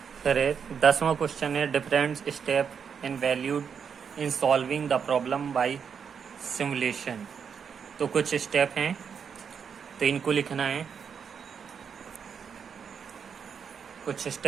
फिर 10वां क्वेश्चन है different step in valued in solving the problem by simulation. तो कुछ स्टेप हैं, तो इनको लिखना है। कुछ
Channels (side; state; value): left; quieter; 6.8 dB